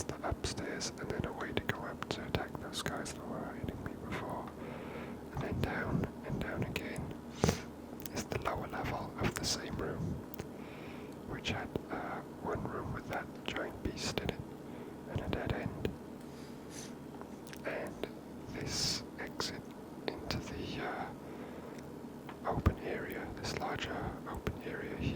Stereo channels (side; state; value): both; identical; correlation 1.00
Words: the upstairs and then a way to go up to attack those guys that were hitting me before. And then down and down again is the lower level of the same room, which had one room with that giant beast in it and a dead end. And this exit into the open area, this larger open area